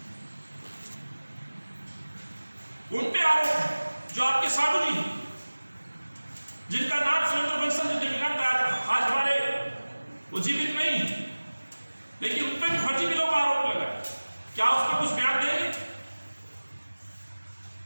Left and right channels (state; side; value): inverted; both; correlation -1.00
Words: उन पे आरोप, जो आपके साधु जी, जिनका नाम सुरेंद्र बंसल जी दिवंगत आज हमारे वो जीवित नहीं, लेकिन उन पे भी फर्जी बिलों का आरोप लगा। क्या उस पर कुछ बयान देंगे?